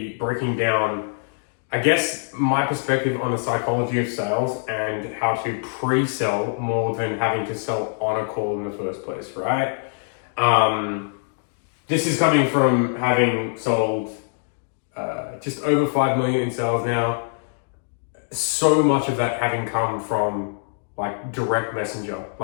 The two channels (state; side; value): silent; right; digital silence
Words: breaking down, I guess, my perspective on the psychology of sales and how to pre-sell more than having to sell on a call in the first place, right? This is coming from having sold just over 5 million in sales now. So much of that having come from like direct messenger,